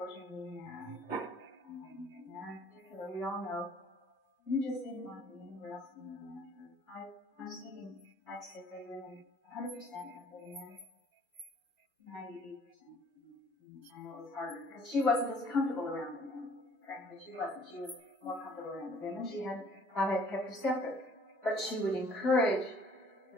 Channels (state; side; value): normal; both; correlation 0.58